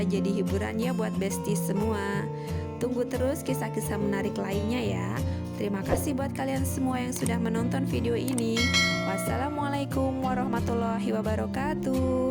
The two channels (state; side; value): identical; both; correlation 1.00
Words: jadi hiburan ya buat Besti semua. Tunggu terus kisah-kisah menarik lainnya ya. Terima kasih buat kalian semua yang sudah menonton video ini. Wassalamualaikum warahmatullahi